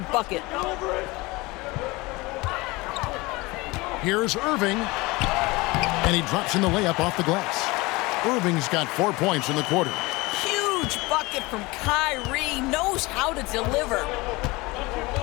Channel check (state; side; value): quieter; right; 23.0 dB